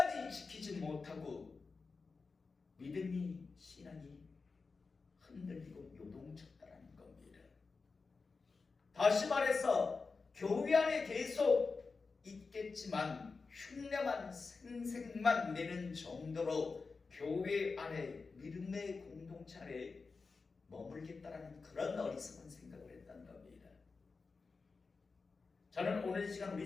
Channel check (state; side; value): quieter; right; 4.4 dB